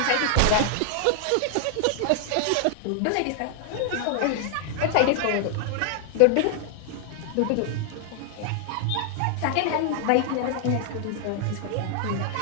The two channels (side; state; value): both; different; correlation 0.00